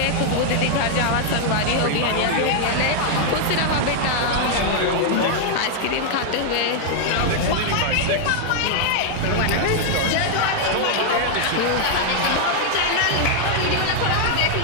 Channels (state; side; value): different; both; correlation 0.00